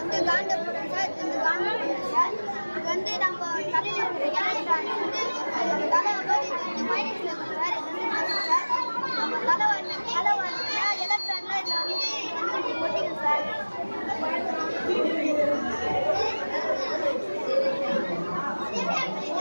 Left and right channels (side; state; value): both; inverted; correlation -1.00